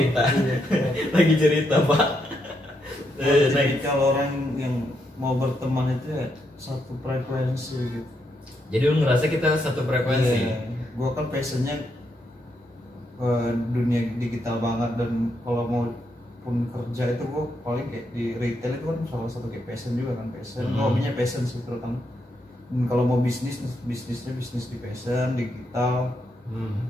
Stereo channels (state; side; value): normal; both; correlation 0.79